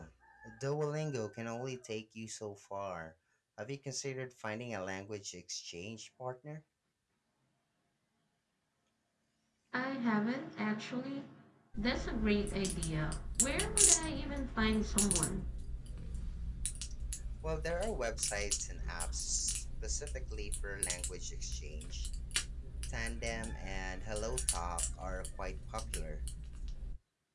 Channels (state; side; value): identical; both; correlation 1.00